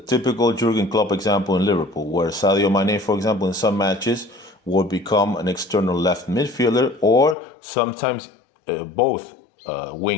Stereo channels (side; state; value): right; drops out; at 7.4 s